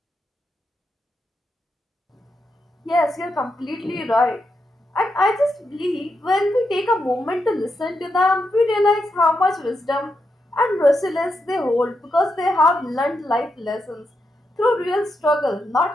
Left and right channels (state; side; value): normal; both; correlation 0.84